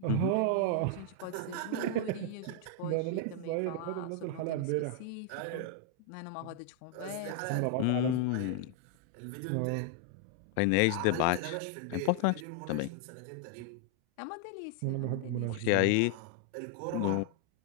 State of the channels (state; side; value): different; both; correlation 0.00